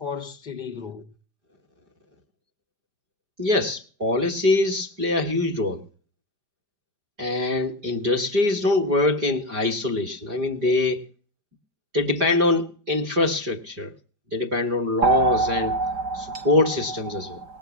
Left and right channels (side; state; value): left; late; 5.0 ms